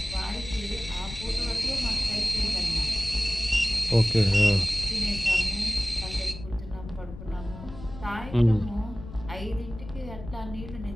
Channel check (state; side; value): noise; left; rumble, 12 dB below the sound